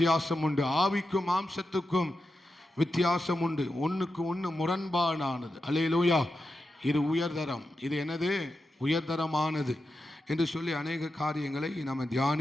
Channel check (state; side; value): normal; both; correlation 0.90